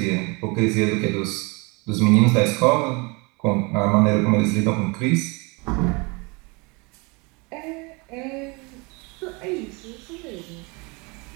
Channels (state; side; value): quieter; left; 28.5 dB